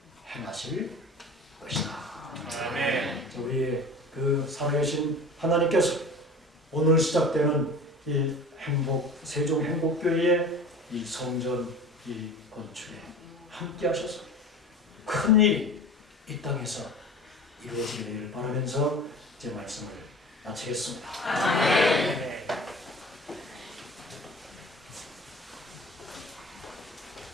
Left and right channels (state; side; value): normal; both; correlation 0.39